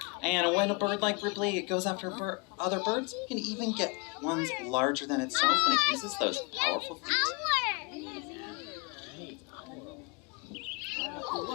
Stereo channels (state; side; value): quieter; right; 30.3 dB